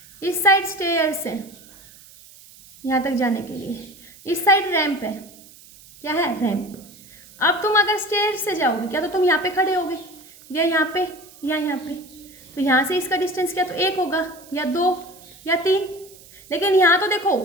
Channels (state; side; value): noise; right; hiss, 22 dB below the sound